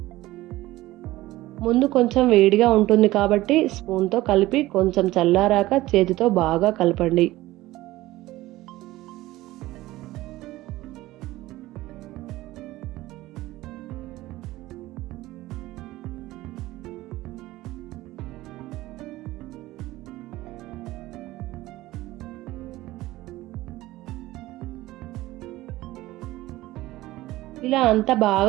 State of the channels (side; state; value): left; quieter; 17.3 dB